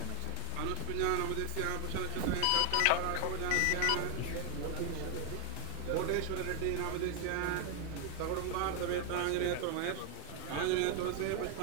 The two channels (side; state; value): both; different; correlation 0.01